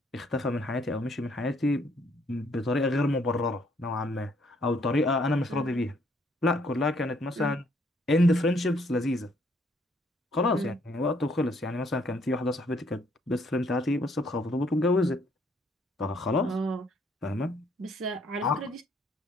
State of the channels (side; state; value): both; normal; correlation 0.67